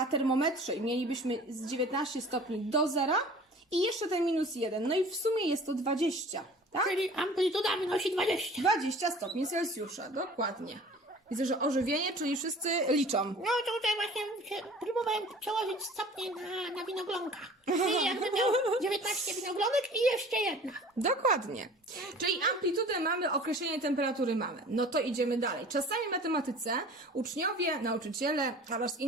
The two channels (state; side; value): normal; both; correlation 0.44